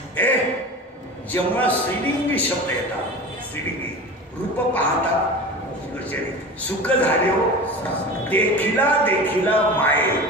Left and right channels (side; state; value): both; normal; correlation 0.33